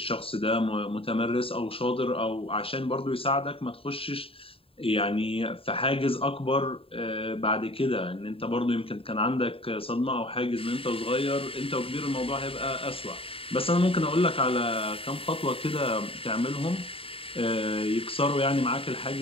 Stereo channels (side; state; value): right; late; 0.27 ms